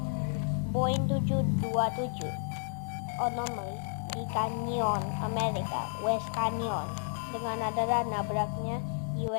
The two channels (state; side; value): silent; right; digital silence